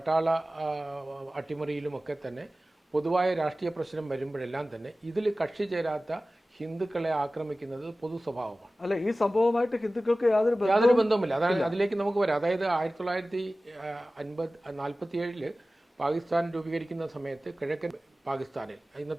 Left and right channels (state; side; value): normal; both; correlation 0.96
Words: അട്ടിമറിയിലുമൊക്കെ തന്നെ പൊതുവായ രാഷ്ട്രീയ പ്രശ്നം വരുമ്പോഴെല്ലാം തന്നെ ഇതിൽ കക്ഷി ചേരാത്ത ഹിന്ദുക്കളെ ആക്രമിക്കുന്നത് പൊതു സ്വഭാവമാണ്. അല്ല, ഈ സംഭവമായിട്ട് ഹിന്ദുക്കൾക്ക് യാതൊരു ബന്ധവുമില്ല. അതാണ് അതിലേക്ക് നമുക്ക് വരാം. അതായത് 1947 പാകിസ്ഥാൻ രൂപീകരിക്കുന്ന സമയത്ത് കിഴക്കൻ പാകിസ്ഥാനിൽ,